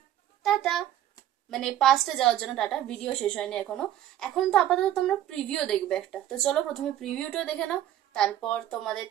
টাটা। মানে 5টে যাওয়ার জন্য টাটা। ভিডিও শেষ হয়নি এখনো। এখন তো আপাতত তোমরা প্রিভিউ দেখবে একটা, তো চলো প্রথমে প্রিভিউটা দেখে নাও, তারপর তোমাদের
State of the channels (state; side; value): quieter; left; 12.2 dB